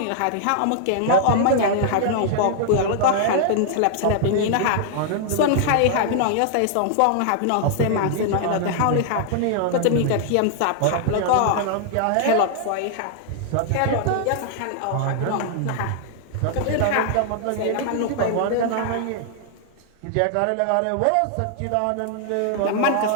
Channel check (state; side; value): different; both; correlation -0.01